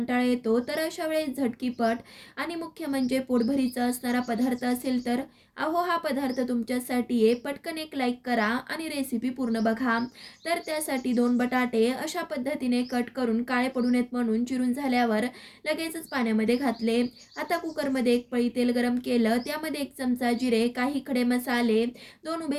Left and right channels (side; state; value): both; identical; correlation 1.00